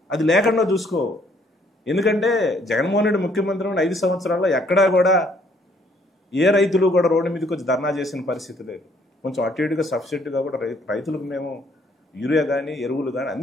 అది లేకుండా చూసుకో. ఎందుకంటే జగన్మోహన్ రెడ్డి ముఖ్యమంత్రి 5 సంవత్సరాల్లో ఎక్కడా కూడా ఏ రైతులు కూడా రోడ్డు మీదకి వచ్చి ధర్నా చేసిన పరిస్థితి లేదు. కొంచెం అటు ఇటుగా సబ్సిడీగా కూడా రైతులకు మేము యూరియా కానీ ఎరువులు కానీ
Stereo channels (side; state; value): both; normal; correlation 0.65